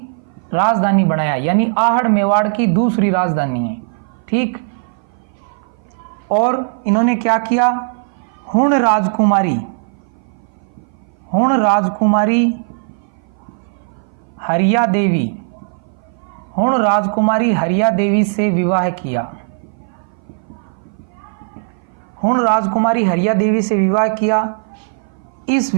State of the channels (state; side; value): silent; left; 58 dB below the other